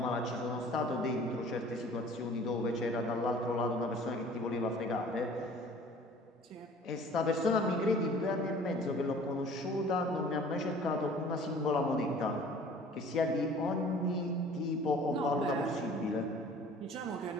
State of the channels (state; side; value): normal; both; correlation 0.49